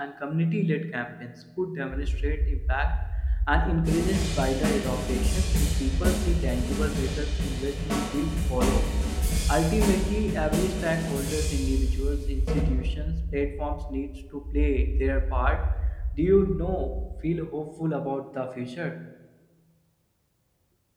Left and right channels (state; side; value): identical; both; correlation 1.00